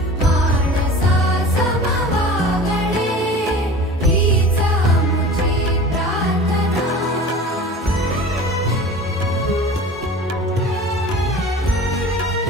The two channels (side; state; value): both; normal; correlation 0.38